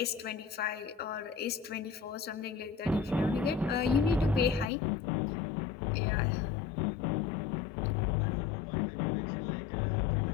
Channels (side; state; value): right; drops out; at 4.7 s